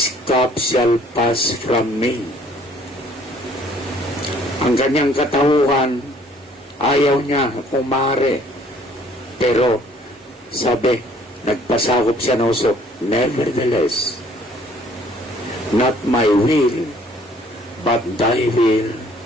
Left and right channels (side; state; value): both; normal; correlation 0.59